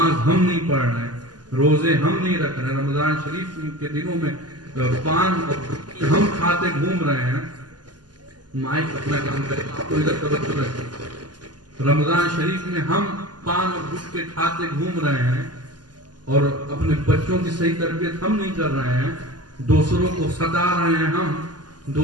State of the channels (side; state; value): left; late; 0.70 ms